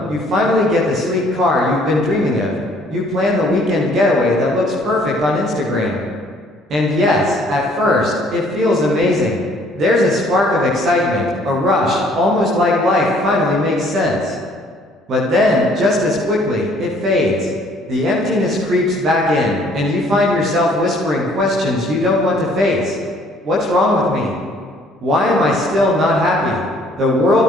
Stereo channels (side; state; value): both; normal; correlation 0.60